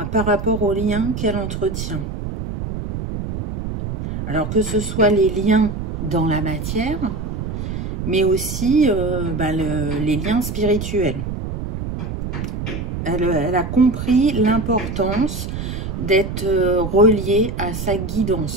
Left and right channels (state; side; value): noise; right; rumble, 5 dB below the sound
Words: rapport aux liens qu'elle entretient. Alors que ce soit les liens dans la matière, mais aussi les liens spirituels. Elle a compris l'importance d'être reliée à sa